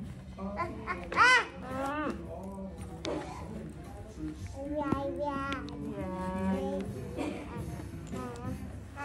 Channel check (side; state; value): both; identical; correlation 1.00